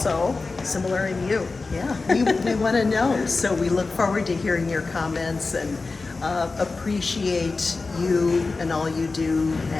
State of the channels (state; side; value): quieter; right; 3.9 dB